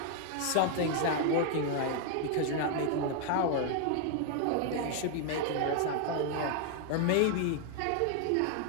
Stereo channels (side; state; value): both; different; correlation 0.00